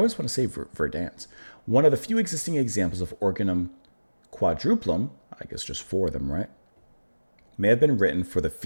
want to say Verdant, one of the few existing examples of organum quadruplum, I guess just 4 of them, right, may have been written for the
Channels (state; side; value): inverted; both; correlation -1.00